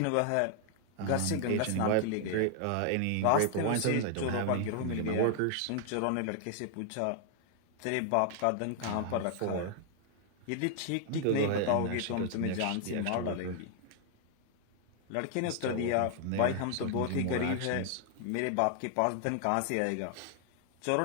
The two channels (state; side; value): different; both; correlation 0.00